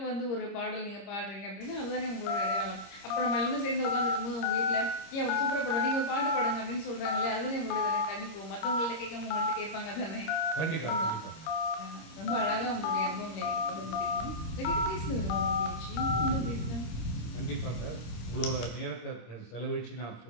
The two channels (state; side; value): late; right; 26 ms